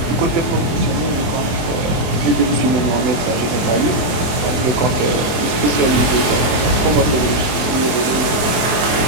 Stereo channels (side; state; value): left; late; 24 ms